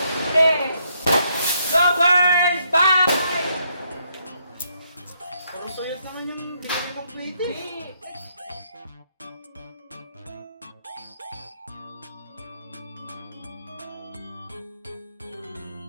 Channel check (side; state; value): both; inverted; correlation -0.74